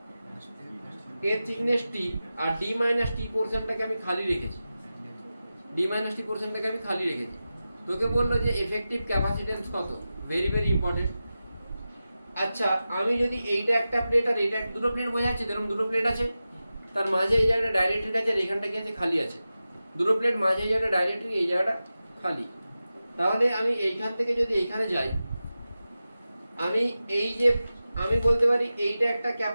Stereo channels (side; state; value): both; inverted; correlation -0.94